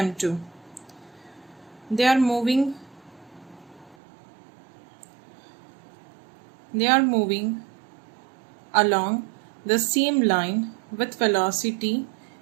They are moving along the same line with velocity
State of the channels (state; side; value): drops out; left; at 4.0 s